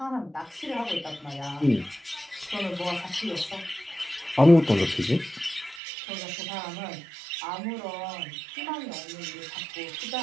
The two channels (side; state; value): left; drops out; at 5.8 s